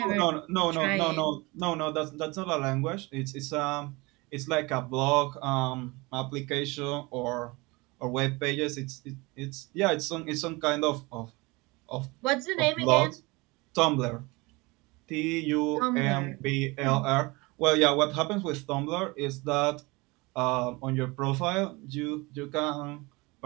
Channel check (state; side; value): quieter; left; 24.6 dB